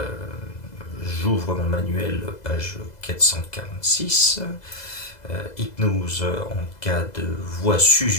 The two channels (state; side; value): late; right; 2.0 ms